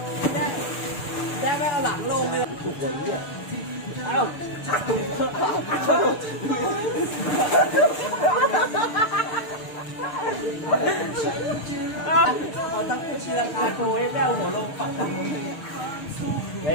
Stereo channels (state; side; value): late; right; 6.7 ms